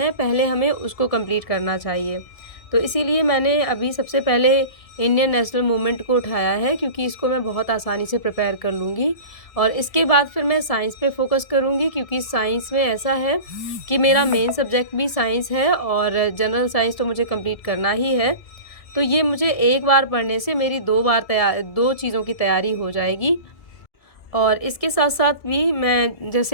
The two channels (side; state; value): right; late; 1.7 ms